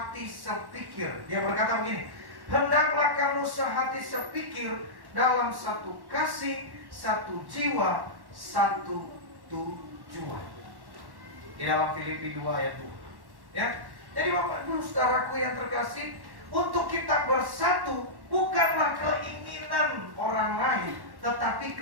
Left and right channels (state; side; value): late; left; 1.1 ms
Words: sepikir. Dia berkata begini, hendaklah kamu sehati sepikir dalam satu kasih, satu jiwa, satu tujuan. Di dalam Filipi 2 ayat 2. Ya, jadi Bapak Ibu saudaraku yang terkasih, untuk kita bersatu bukanlah keinginan orang lain, tetapi